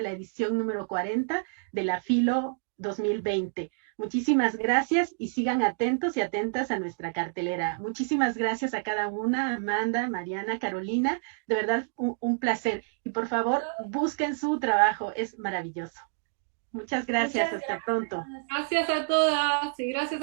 la edición número 40 de la Filo 2020. Muchísimas gracias y sigan atentos y atentas a nuestra cartelera. Muchísimas gracias a cada una, Amanda, Mariana, Carolina. De verdad, un placer. Y por favor, busquen su trabajo, es maravilloso. Muchas gracias, Muchas hasta pronto. gracias. Gracias a todas y gracias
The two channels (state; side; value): silent; left; digital silence